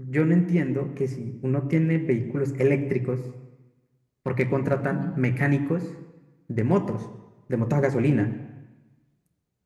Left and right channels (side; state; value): both; identical; correlation 1.00